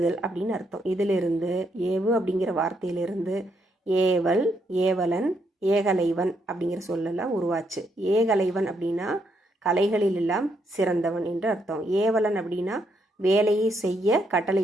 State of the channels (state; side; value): normal; both; correlation 0.76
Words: அப்படின்னு அர்த்தம். இதிலிருந்து ஏவு அப்படிங்கிற வார்த்தையிலிருந்து ஏவல், ஏவலன், ஏகலைவன் அப்படிங்கிற சொல்லெல்லாம் உருவாச்சு. ஏகலைவன் அப்படின்னா கலைகளில் எல்லாம் சிறந்தவன் என்று அர்த்தம். ஏவலன் அப்படின்னா வேலையை செய்ய